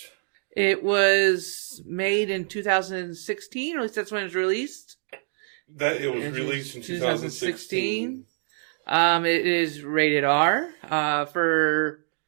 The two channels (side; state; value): left; silent; digital silence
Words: It was made in 2016, or at least that's when it was released. That it was released in 2016. It is rated R for